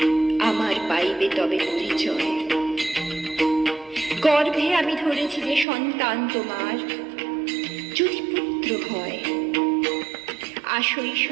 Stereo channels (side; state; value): left; drops out; at 5.7 s